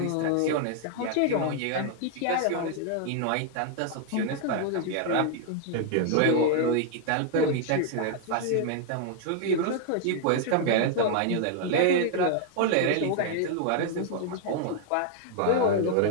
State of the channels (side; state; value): both; different; correlation 0.00